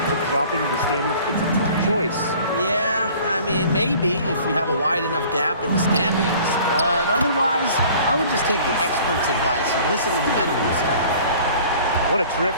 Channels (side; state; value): both; inverted; correlation -0.49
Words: of dropping in the standings? It's a tough choice. Yeah, I mean, maybe if you have a wide enough gap in the standings. But otherwise, I would just take the experts' advice and listen to the medical staff. What a